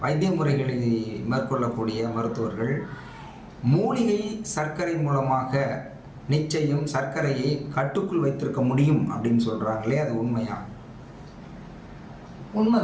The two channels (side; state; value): both; identical; correlation 1.00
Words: வைத்திய முறைகளை மேற்கொள்ளக்கூடிய மருத்துவர்கள் மூலிகை சர்க்கரை மூலமாக நிச்சயம் சர்க்கரையை கட்டுக்குள் வைத்திருக்க முடியும் அப்படின்னு சொல்கிறாங்களே, அது உண்மையா?